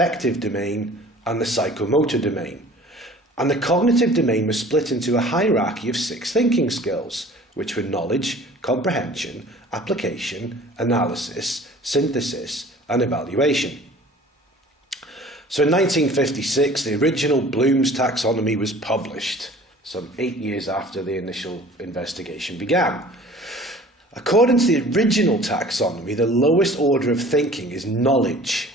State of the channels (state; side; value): normal; both; correlation 0.47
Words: domain, and the psychomotor domain. And the cognitive domain was split into a hierarchy of 6 thinking skills, which were knowledge, comprehension, application, analysis, synthesis, and evaluation. So in 1956, the original Bloom's taxonomy was published, some 8 years after the initial investigation began. According to the original taxonomy, the lowest order of thinking is knowledge,